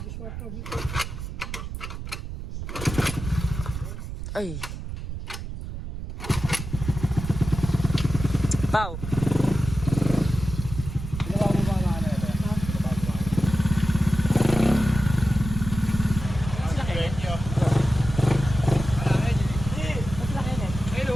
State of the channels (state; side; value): noise; right; rumble, 7 dB below the sound